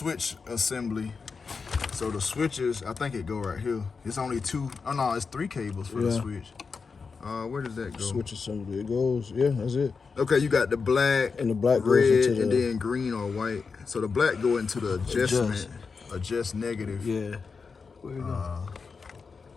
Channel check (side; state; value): right; quieter; 5.0 dB